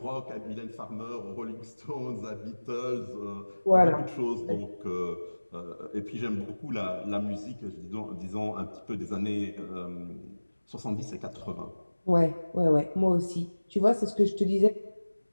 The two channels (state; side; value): inverted; both; correlation -1.00